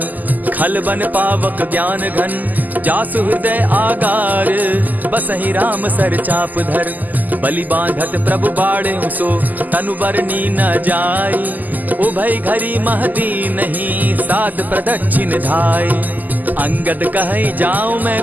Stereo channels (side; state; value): left; late; 0.083 ms